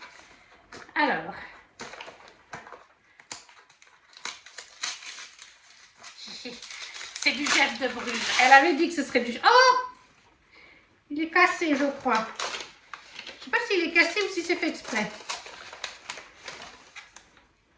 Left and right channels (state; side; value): identical; both; correlation 1.00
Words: Alors. C'est du Jeff de Bruges. Elle avait dit que ce serait du... Oh! Il est cassé, je crois. Je ne sais pas s'il est cassé ou si c'est fait exprès.